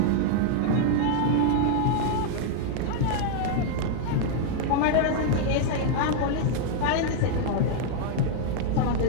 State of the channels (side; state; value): both; different; correlation -0.01